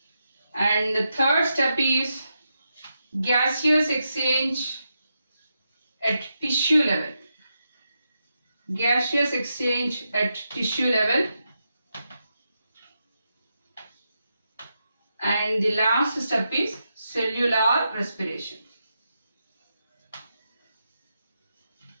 And the third step is gaseous exchange at tissue level. Gaseous exchange at tissue level. And the last step is cellular respiration.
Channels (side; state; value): both; inverted; correlation -0.85